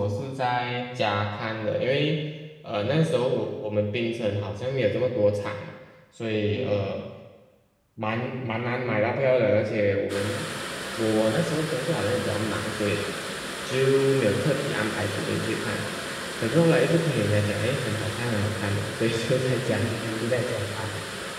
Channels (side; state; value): both; identical; correlation 1.00